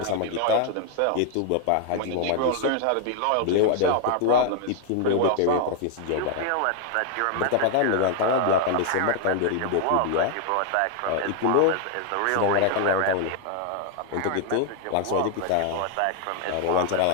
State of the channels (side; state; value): both; different; correlation 0.00